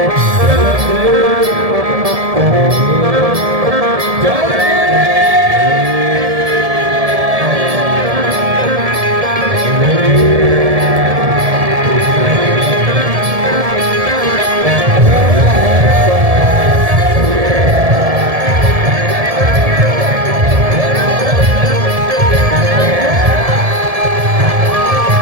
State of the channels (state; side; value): late; left; 1.7 ms